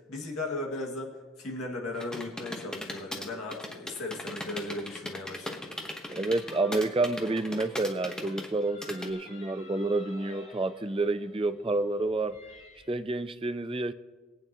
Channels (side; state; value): both; normal; correlation 0.64